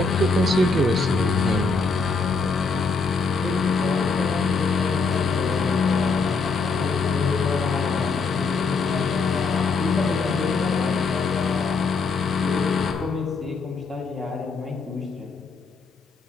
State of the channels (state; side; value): quieter; right; 4.2 dB